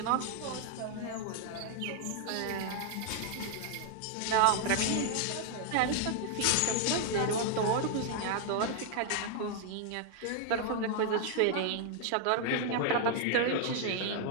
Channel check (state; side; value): different; both; correlation 0.00